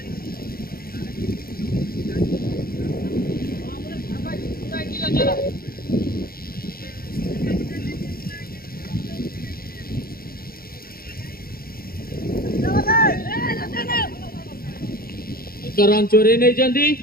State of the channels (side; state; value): right; late; 0.43 ms